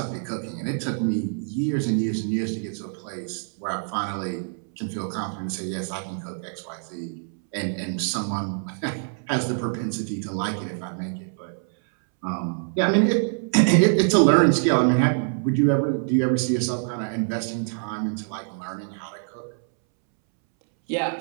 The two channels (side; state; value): left; silent; 62 dB below the other